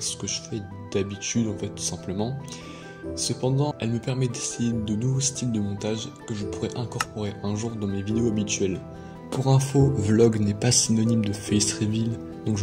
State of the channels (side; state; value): both; identical; correlation 1.00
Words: ce que je fais d'habitude en fait tout simplement. Cependant, elle me permet d'essayer de nouveaux styles de montage que je pourrais incorporer un jour dans mes vidéos habituelles. Pour info, vlog n'est pas synonyme de face reveal, donc